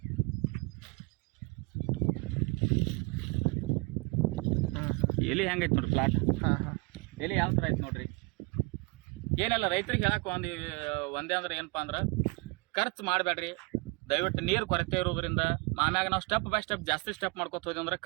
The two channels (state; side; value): quieter; left; 27.9 dB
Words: ಎಲ್ಲಿ ಹೆಂಗೈತಿ ನೋಡ್ರಿ ಪ್ಲಾಟ್. ಎಲ್ಲಿ ಯಾವ ಥರ ಐತಿ ನೋಡ್ರಿ. ಏನೆಲ್ಲ ರೈತರಿಗೆ ಹೇಳಕ್ಕೆ ಒಂದೇ ಅಂದ್ರೆ ಏನಪ್ಪ ಅಂದ್ರೆ, ಖರ್ಚು ಮಾಡಬೇಡ್ರಿ ದಯವಿಟ್ಟು. ನೀರು ಕೊರತೆ ಇರೋದ್ರಿಂದ ಆಮ್ಯಾಗ ನಾವು ಸ್ಟೆಪ್ ಬೈ ಸ್ಟೆಪ್ ಜಾಸ್ತಿ ಸ್ಟೆಪ್ ಮಾಡ್ಕೊತ ಹೋದ್ವಿ ಅಂದ್ರೆ